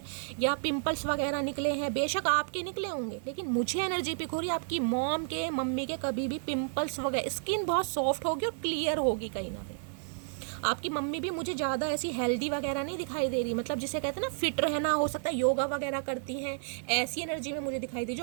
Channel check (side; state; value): left; silent; digital silence